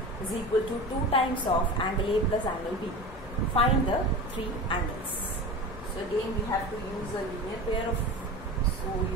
is equal to 2 times of angle A plus angle B. Find the 3 angles. So again we have to use a linear pair of, so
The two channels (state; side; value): noise; left; rumble, 17 dB below the sound